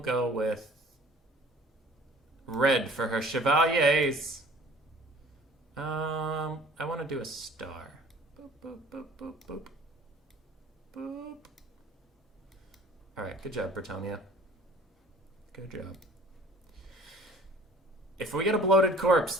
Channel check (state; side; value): normal; both; correlation 0.50